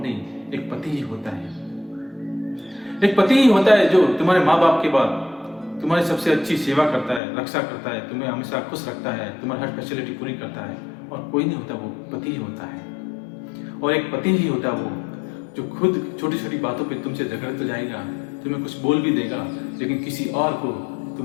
एक पति ही होता है। एक पति ही होता है जो तुम्हारे माँ बाप के बाद तुम्हारी सबसे अच्छी सेवा करता है, रक्षा करता है, तुम्हें हमेशा खुश रखता है, तुम्हारी हर फैसिलिटी पूरी करता है, और कोई नहीं होता, वो पति ही होता है। और एक पति ही होता है वो जो खुद छोटी छोटी बातों पे तुमसे झगड़ तो जाएगा, तुम्हें कुछ बोल भी देगा, लेकिन किसी और को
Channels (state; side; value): drops out; right; at 7.2 s